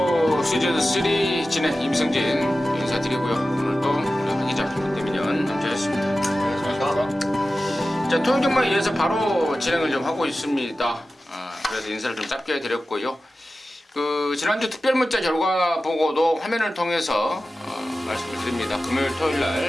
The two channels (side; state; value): both; normal; correlation 0.94